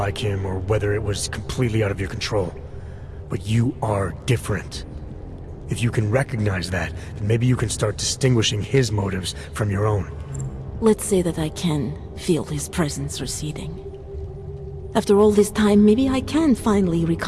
him or whether it was completely out of your control. But you are different. If you can recognize that, then maybe you can start distinguishing his motives from your own. Let's say that I can feel his presence receding. After all this time, maybe I can finally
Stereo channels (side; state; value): both; identical; correlation 1.00